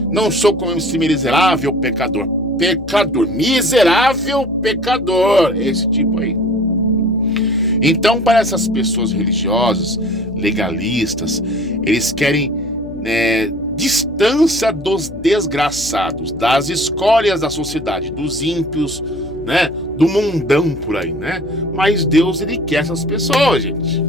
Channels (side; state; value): left; noise; hum, 15 dB below the sound